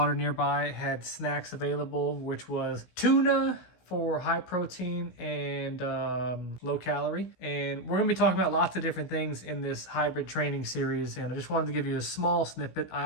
nearby, had snacks available, which was tuna for high protein and low calorie. And we're gonna be talking about lots of different things in this hybrid training series. And I just wanted to give you a small snippet. I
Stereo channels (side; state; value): right; late; 16 ms